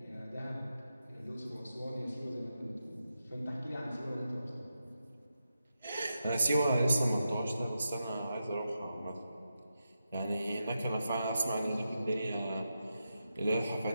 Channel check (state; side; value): inverted; both; correlation -0.88